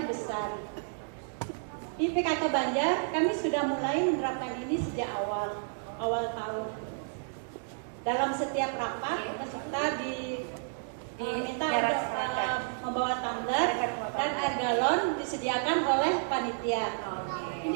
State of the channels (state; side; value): silent; left; digital silence